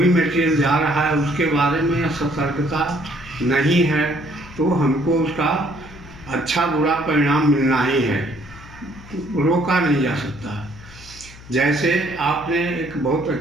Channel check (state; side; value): noise; left; hum, 19 dB below the sound